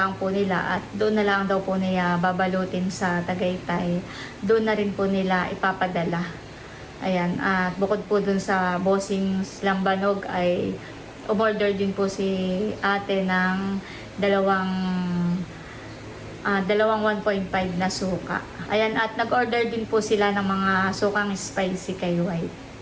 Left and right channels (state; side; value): identical; both; correlation 1.00